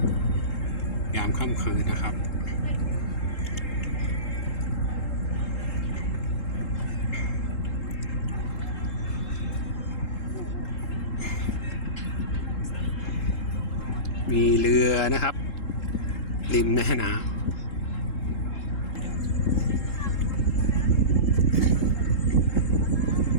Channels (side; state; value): right; late; 3.7 ms